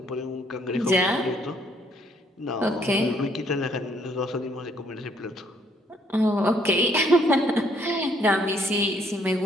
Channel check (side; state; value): both; normal; correlation 0.67